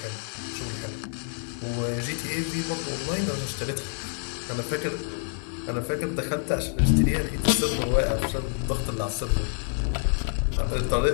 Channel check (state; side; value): silent; right; 60 dB below the other